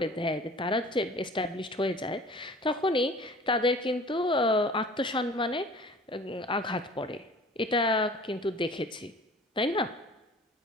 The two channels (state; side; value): normal; both; correlation 0.46